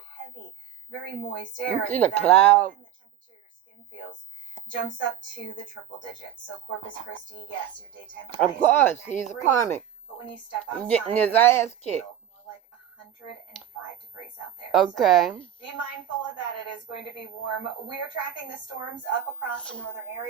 Heavy, very moist air. You see the cloud? The temperature your skin feels jumps up to the triple digits. So Corpus Christi, yes, your daytime high. Of course, he's a karmic. But when you step outside, getting his ass kicked. More like 105 degrees out there. Okay. So be mindful of that. It is going to be warm. We are tracking the storms up across the northern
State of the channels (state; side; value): quieter; left; 10.7 dB